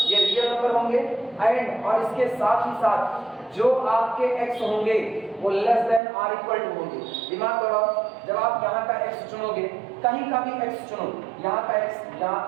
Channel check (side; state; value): left; drops out; at 6.0 s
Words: ये रियल नंबर होंगे। एंड और इसके साथ ही साथ जो आपके x होंगे वो less than or equal to होंगे। दिमाग लगाओ, जब आप यहाँ का x चुनोगे, कहीं का भी x चुनो, यहाँ का x, यहाँ